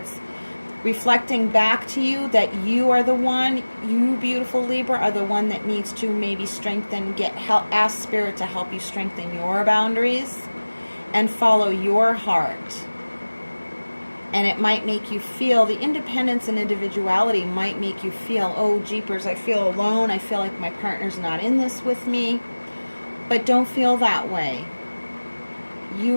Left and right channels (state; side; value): inverted; both; correlation -1.00